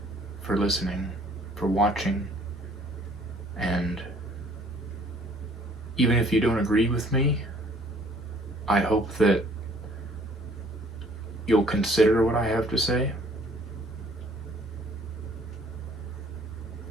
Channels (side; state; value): both; normal; correlation 0.58